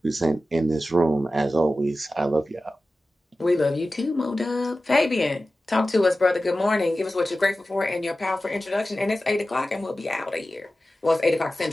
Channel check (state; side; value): normal; both; correlation 0.94